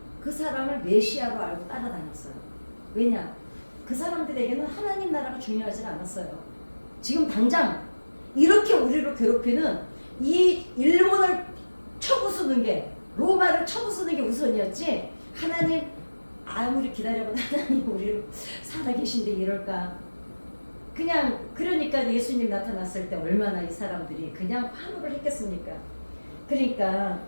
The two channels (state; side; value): inverted; both; correlation -1.00